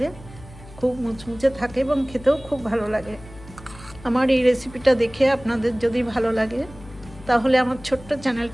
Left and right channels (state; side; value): noise; left; hum, 19 dB below the sound